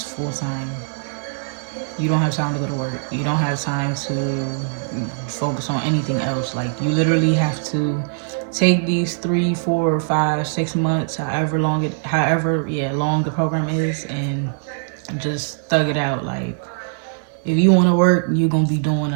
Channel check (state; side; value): silent; left; digital silence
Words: full-time. You don't have time to go to work. You don't have time to focus on anything else. Like you literally have to take these 3, 4, 5, 6 months, however long the program is, and just thug it out. Like if you want to work, you're gonna be doing